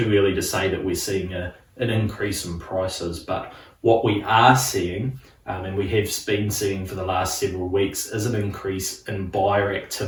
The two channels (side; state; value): both; identical; correlation 1.00